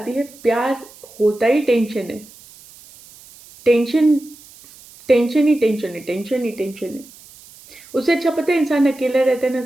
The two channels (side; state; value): right; noise; hiss, 22 dB below the sound